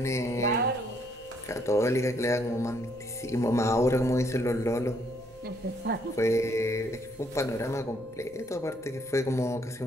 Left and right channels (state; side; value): noise; right; rumble, 27 dB below the sound